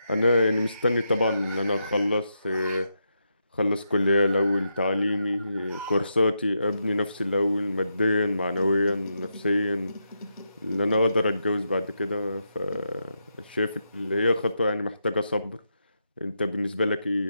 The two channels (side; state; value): both; inverted; correlation -0.84